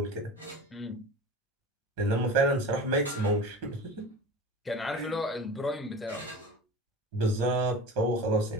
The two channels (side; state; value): both; normal; correlation 0.34